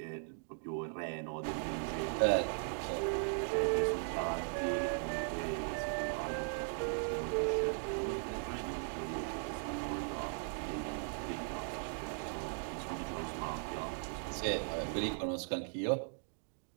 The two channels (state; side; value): silent; left; 52 dB below the other